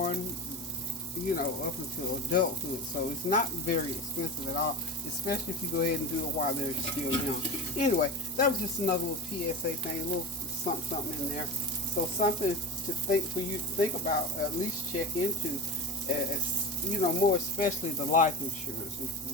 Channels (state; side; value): normal; both; correlation 0.27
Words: up until adulthood. So it's not very expensive at all, especially if you go ahead and do it while they're still young. Anyway, that was just another little PSA thing, a little something in there. So something for you to think about, at least check into, more especially the life insurance. It's